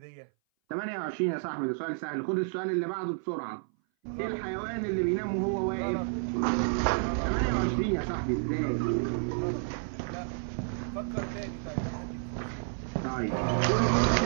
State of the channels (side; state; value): left; silent; 57 dB below the other